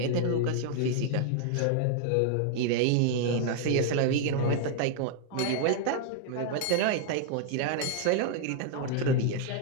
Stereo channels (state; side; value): different; both; correlation 0.00